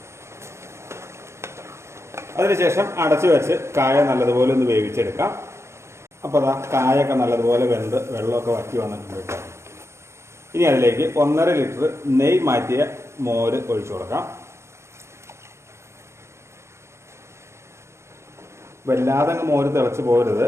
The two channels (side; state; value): left; late; 0.13 ms